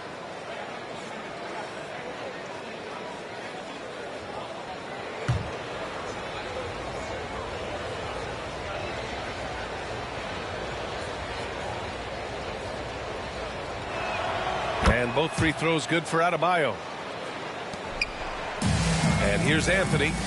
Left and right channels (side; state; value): both; identical; correlation 1.00